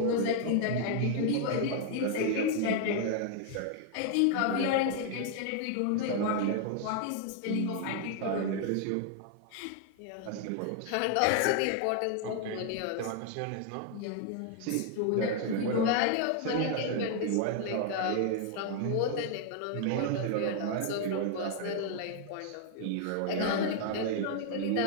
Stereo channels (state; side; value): different; both; correlation 0.00